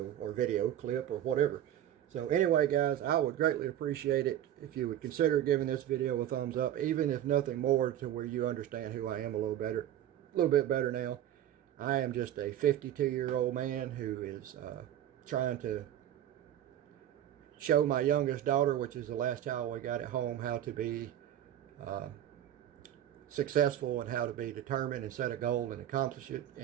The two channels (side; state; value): left; quieter; 11.5 dB